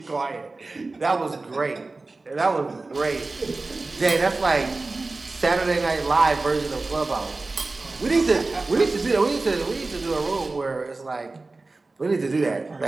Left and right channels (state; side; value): quieter; left; 3.4 dB